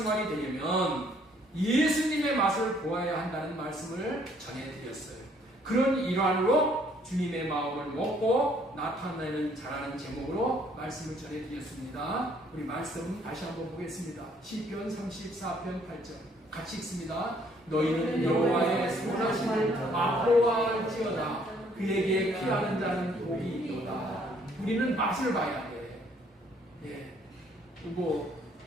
되려면 예수님의 맛을 보아야 한다는 말씀을 전해드렸어요. 그런 일환으로 주님의 마음을 먹고 나타내는 자라는 제목으로 말씀을 전해드렸습니다. 우리 말씀 다시 한번 보겠습니다. 시편 34편 8절 같이 읽습니다. 너희는 여호와의 선하심을 맛보아할지어다. 그에게 피하는 자는 복이 있도다. 우리는 맛을 봐야 돼. 예.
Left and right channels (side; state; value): both; normal; correlation 0.64